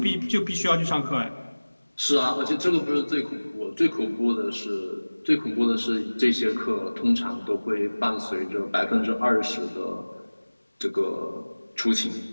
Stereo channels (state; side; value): inverted; both; correlation -1.00